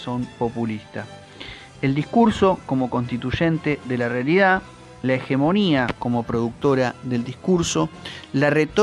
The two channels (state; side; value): identical; both; correlation 1.00